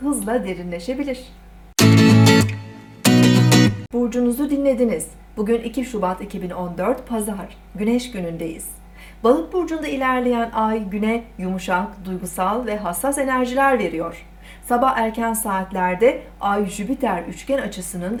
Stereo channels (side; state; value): both; identical; correlation 1.00